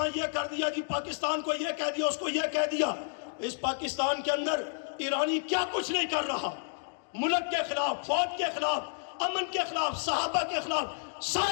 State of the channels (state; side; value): silent; right; digital silence